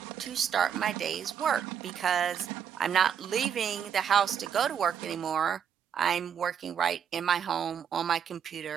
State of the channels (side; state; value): left; quieter; 8.0 dB